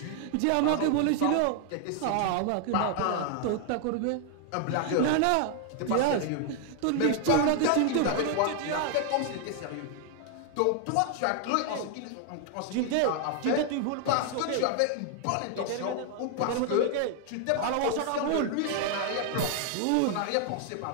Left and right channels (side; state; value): both; different; correlation 0.00